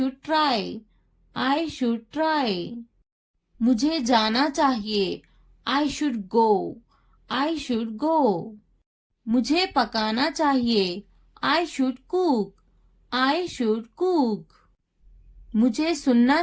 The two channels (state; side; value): identical; both; correlation 1.00